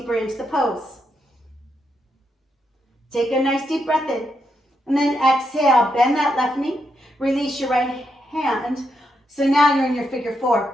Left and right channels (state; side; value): normal; both; correlation 0.81